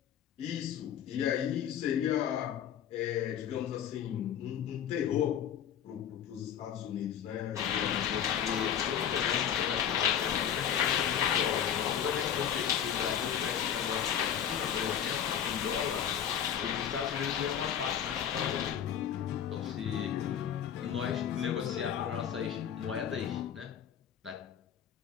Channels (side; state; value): right; quieter; 9.2 dB